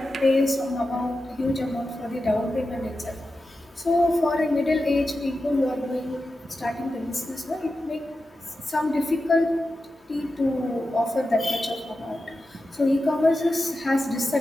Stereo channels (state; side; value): normal; both; correlation 0.91